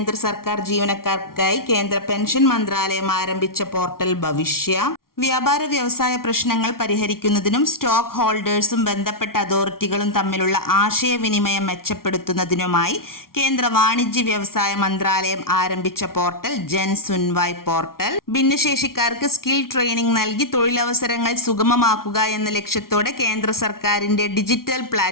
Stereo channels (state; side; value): late; right; 0.93 ms